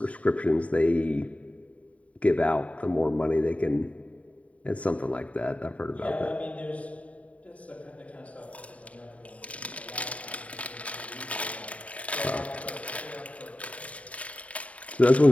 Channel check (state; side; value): late; right; 0.067 ms